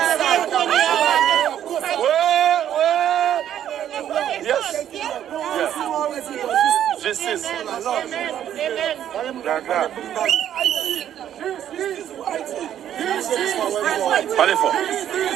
Yes. Justice. Parlez fort.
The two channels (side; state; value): left; quieter; 10.6 dB